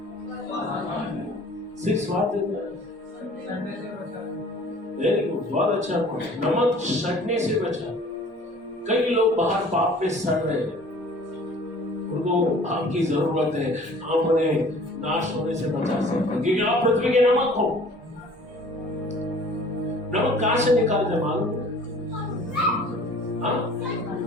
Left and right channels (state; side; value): normal; both; correlation 0.49